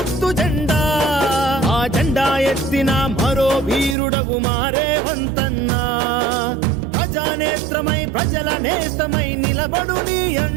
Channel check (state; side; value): drops out; left; at 4.0 s